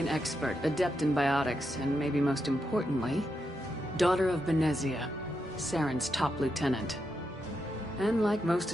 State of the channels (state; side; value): normal; both; correlation 0.84